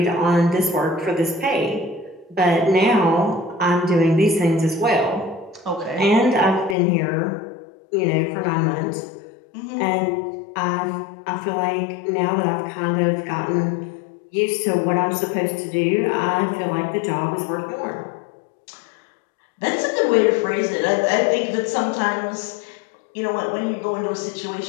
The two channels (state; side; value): drops out; right; at 6.8 s